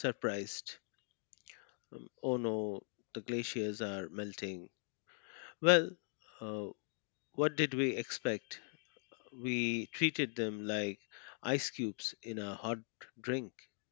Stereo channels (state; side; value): silent; right; 51 dB below the other